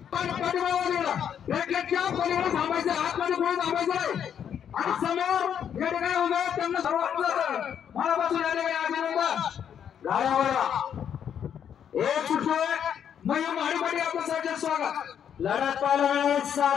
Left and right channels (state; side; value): quieter; right; 8.6 dB